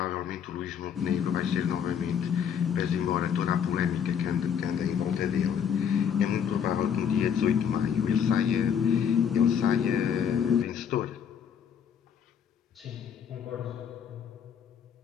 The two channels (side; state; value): right; quieter; 7.9 dB